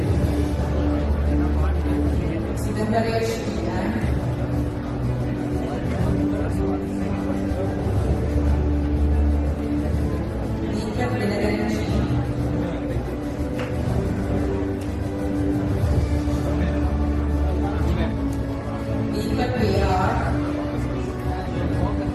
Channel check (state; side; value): identical; both; correlation 1.00